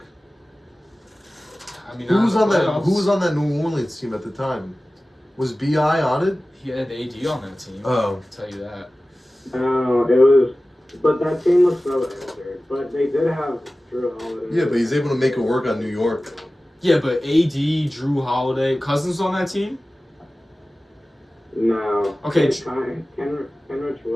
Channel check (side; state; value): both; normal; correlation 0.96